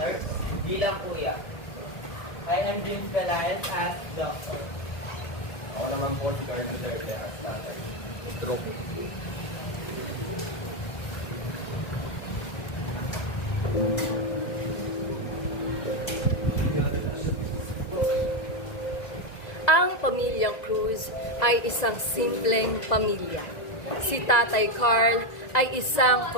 bilang kuya. I am James Pelayan as doctor. Ako naman po si Carmen Duterte as tatay. Stroke. Ang pamilyang Cruz ay isang simpleng pamilya. Si Tatay Carl ay isang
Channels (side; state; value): right; late; 2.0 ms